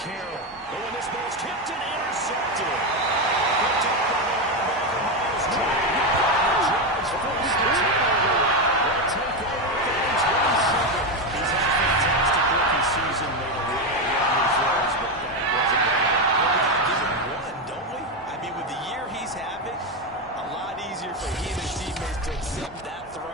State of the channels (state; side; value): normal; both; correlation 0.11